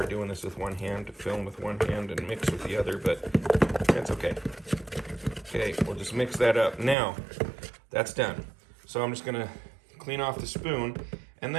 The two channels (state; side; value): drops out; left; at 7.0 s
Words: doing this with one hand, to film with one hand and mix with the other, but that's okay. Okay, we'll just mix that up. Now, that's done. So I'm just gonna clean off the spoon, and